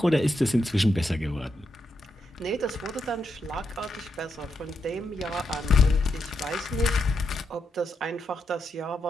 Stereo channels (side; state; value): both; normal; correlation 0.82